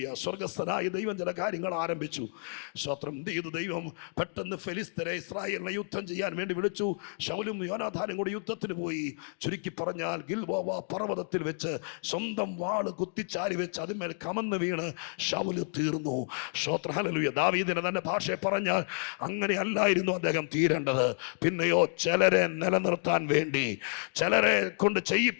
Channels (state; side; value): silent; right; digital silence